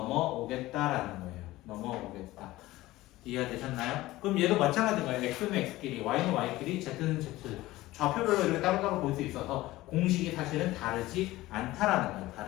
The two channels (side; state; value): right; quieter; 17.6 dB